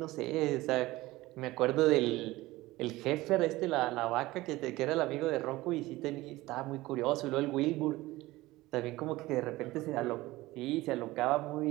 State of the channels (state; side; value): quieter; left; 18.7 dB